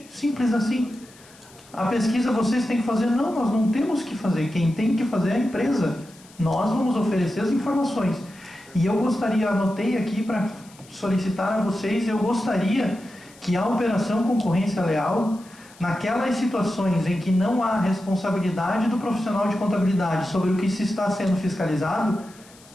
Simples assim. A pesquisa vocês têm que fazer? Não, nós não temos que fazer. Quem tem que fazer é a empresa. Nós vamos oferecer as informações. E eu gostaria, anotei aqui para solicitar a vocês, eu gostaria que a operação concorrência leal, naquelas situações em que não há responsabilidade do profissional de contabilidade sobre o que se está sendo fiscalizado,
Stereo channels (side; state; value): left; noise; hiss, 25 dB below the sound